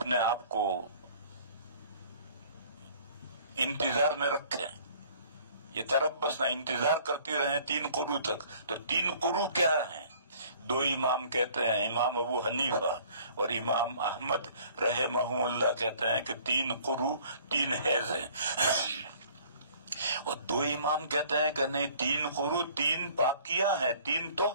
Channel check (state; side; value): inverted; both; correlation -0.54